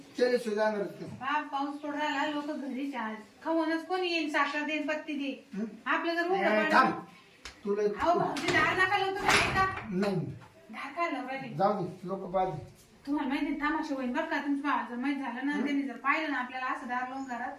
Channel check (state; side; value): identical; both; correlation 1.00